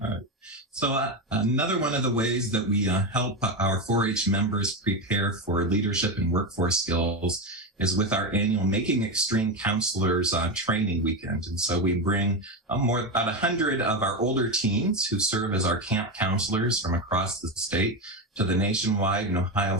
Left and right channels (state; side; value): normal; both; correlation 0.14